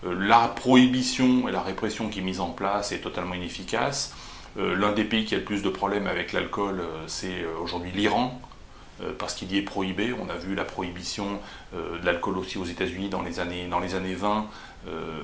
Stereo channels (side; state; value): both; identical; correlation 1.00